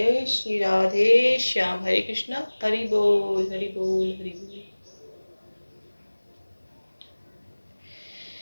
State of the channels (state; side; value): inverted; both; correlation -1.00